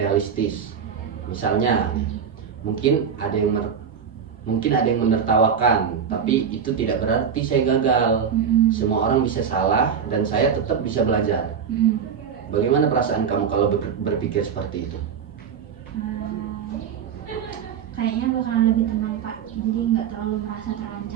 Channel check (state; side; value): quieter; left; 7.2 dB